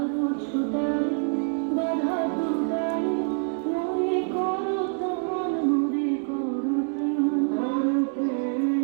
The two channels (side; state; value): left; silent; 60 dB below the other